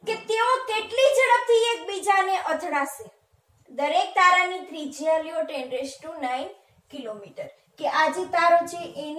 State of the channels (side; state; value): both; identical; correlation 1.00